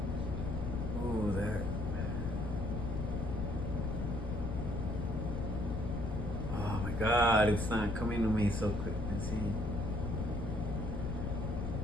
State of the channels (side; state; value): left; noise; rumble, 2 dB below the sound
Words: Ooh, that. Oh my God! It's not coming to me so quick. Let's see.